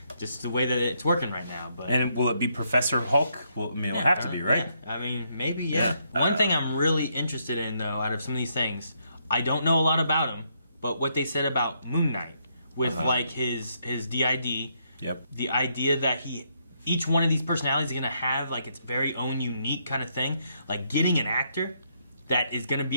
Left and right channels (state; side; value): inverted; both; correlation -0.75